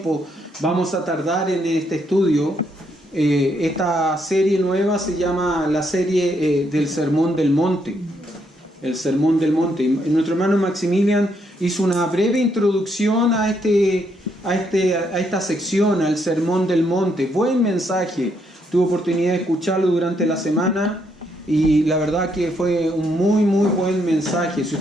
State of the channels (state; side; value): normal; both; correlation 0.75